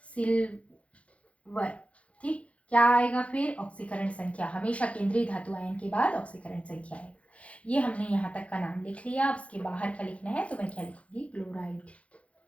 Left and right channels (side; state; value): right; late; 0.063 ms